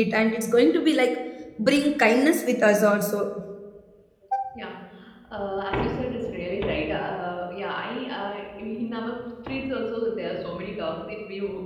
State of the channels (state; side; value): identical; both; correlation 1.00